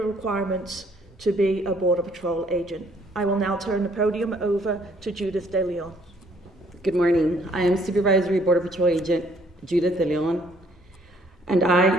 to be a Border Patrol agent. I will now turn the podium over to Judith De Leon. Good morning. I am Supervisory Border Patrol Agent Judith De Leon, and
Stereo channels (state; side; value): normal; both; correlation 0.63